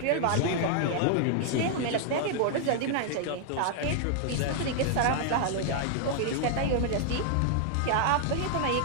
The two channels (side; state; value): both; different; correlation 0.00